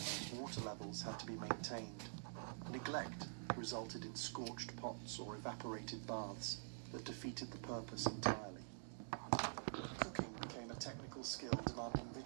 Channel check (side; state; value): left; silent; digital silence